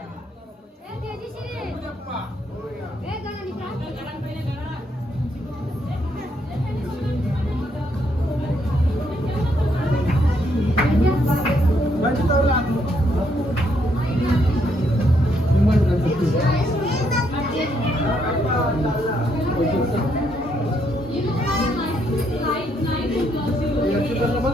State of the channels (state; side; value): normal; both; correlation 0.74